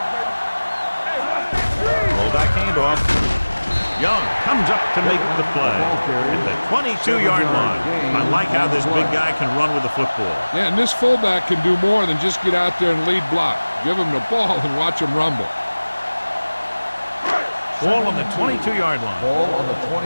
baby. Hey, Roll back handoff. Young comes up to make the play at the 22-yard line. I like how this big guy can run with the football. Yeah, and this fullback can do more than just get out there and lead block. Give him the ball and watch him rumble. Ball on the 22-yard line. Ball on the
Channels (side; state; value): both; inverted; correlation -1.00